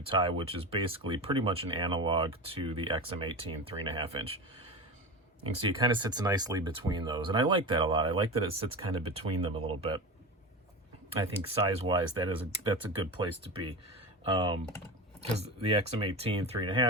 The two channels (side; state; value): both; normal; correlation 0.25